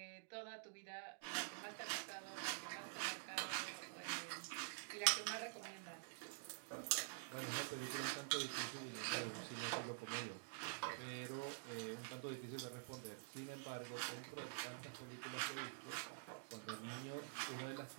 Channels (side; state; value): left; silent; digital silence